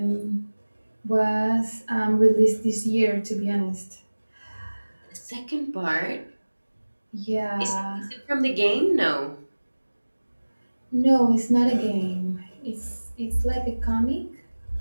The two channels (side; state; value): both; inverted; correlation -1.00